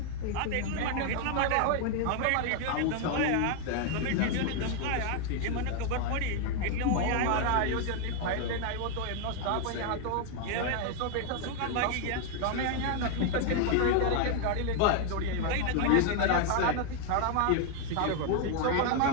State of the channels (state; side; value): different; both; correlation 0.00